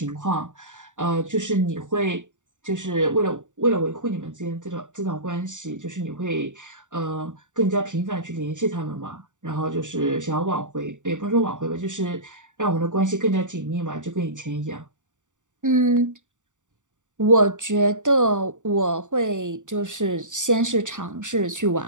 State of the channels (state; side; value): late; left; 0.86 ms